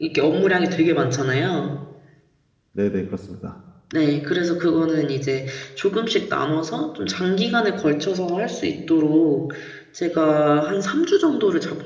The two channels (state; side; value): identical; both; correlation 1.00